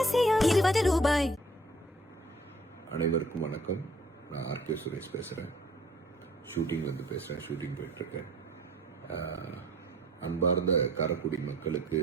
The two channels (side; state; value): both; normal; correlation 0.54